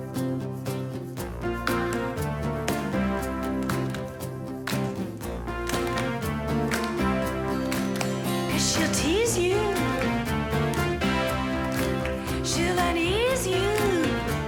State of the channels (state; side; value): identical; both; correlation 1.00